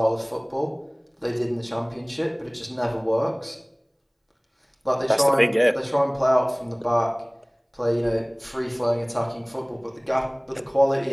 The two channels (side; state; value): both; identical; correlation 1.00